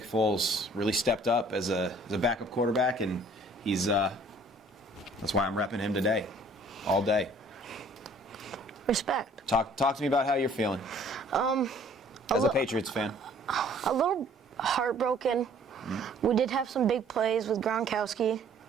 Foles really stepped up as a backup quarterback, and he's that's why I'm repping him today, all day. Respect. Talk to me about how you're feeling as a Patriots fan. A little heartbroken. Mm-hmm. We did have some big plays with Gronkowski.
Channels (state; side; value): normal; both; correlation 0.56